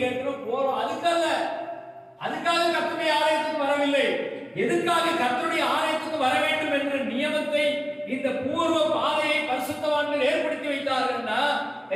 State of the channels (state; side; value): identical; both; correlation 1.00